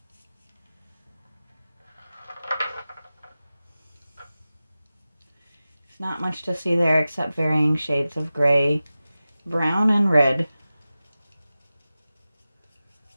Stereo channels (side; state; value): both; inverted; correlation -0.95